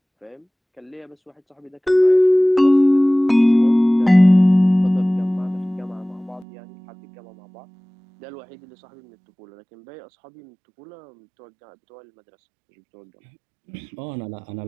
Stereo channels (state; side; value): drops out; left; at 6.5 s